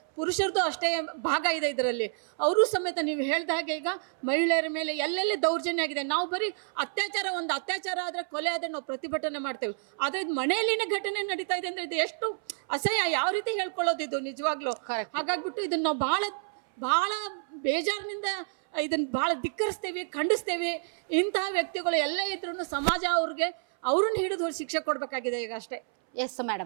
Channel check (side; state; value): left; silent; 59 dB below the other